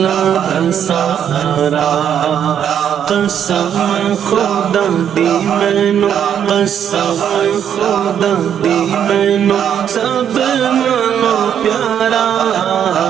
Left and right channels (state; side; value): quieter; left; 9.0 dB